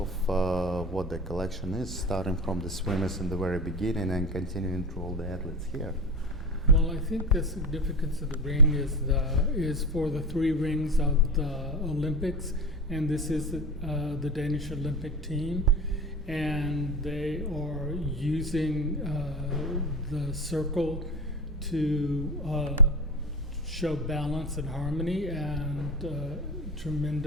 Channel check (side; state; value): both; normal; correlation 0.24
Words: what the collection is, starting from the swimmers in the very beginning and continuing through all the athletes here. Well, I think the significance of the ring is for the 3 rings of the Olympics, and this is the Danish Olympic team, and they are using the circle to show balance and harmony and